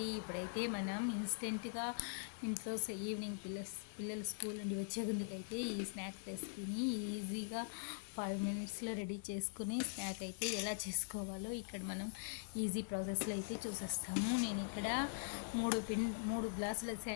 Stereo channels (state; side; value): silent; right; digital silence